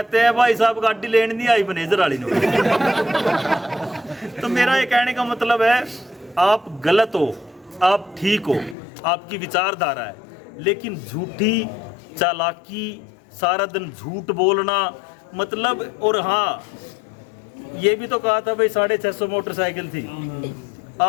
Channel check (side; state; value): right; drops out; at 8.8 s